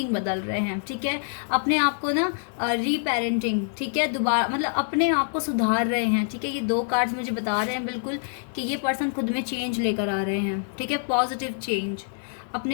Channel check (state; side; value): silent; right; 55 dB below the other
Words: बदल रहे हैं, ठीक है। अपने आप को ना रीपेरेंटिंग, ठीक है, दोबारा मतलब अपने आप को सुधार रहे हैं, ठीक है। ये 2 कार्ड्स मुझे बता रहे हैं बिल्कुल कि ये पर्सन खुद में चेंज लेकर आ रहे हैं, ठीक है, पॉजिटिव चेंज